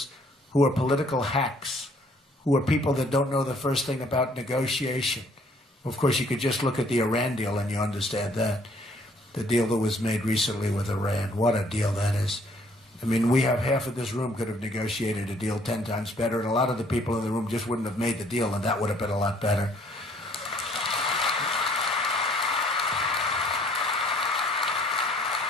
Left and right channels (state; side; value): normal; both; correlation 0.61